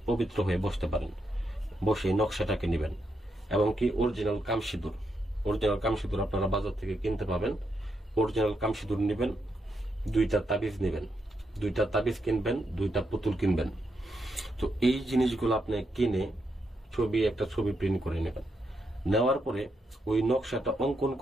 পবিত্র হয়ে বসতে পারেন। বসে নকশাটাকে নেবেন এবং কি অরিজিনাল কামসিঁদুর, অরিজিনাল কামসিঁদুর আপনারা বাজার থেকে কিনতে পাবেন। অরিজিনাল কামসিঁদুর নেবেন, দুইটা তাবিজ নেবেন, দুইটা তাবিজ কিনবেন, দুইটা পুতুল কিনবেন। তো এই জিনিসগুলো আপনি কিনে একটা ছবি প্রিন্ট করে নেবেন। নেওয়ার পরে ওই নকশাটা অঙ্কন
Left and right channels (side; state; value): both; normal; correlation 0.81